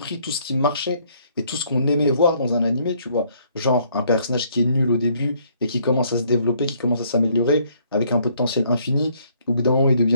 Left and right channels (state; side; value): inverted; both; correlation -0.66